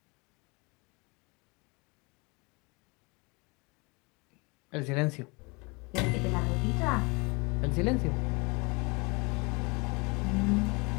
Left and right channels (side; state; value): right; quieter; 28.1 dB